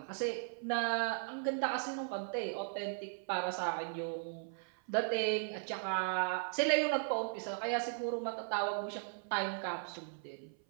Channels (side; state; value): left; silent; 53 dB below the other